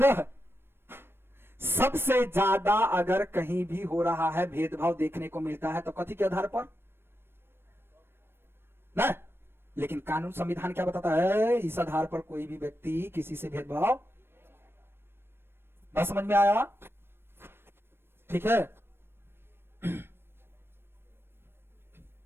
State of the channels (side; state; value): left; late; 0.11 ms